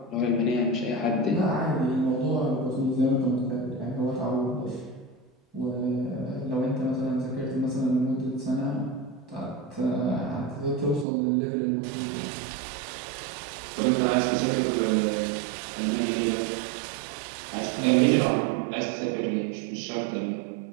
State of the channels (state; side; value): drops out; left; at 11.1 s